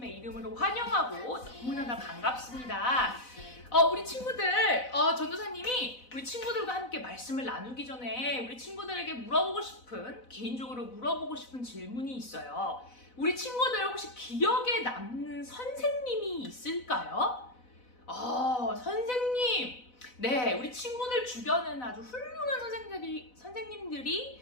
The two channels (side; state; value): right; late; 4.0 ms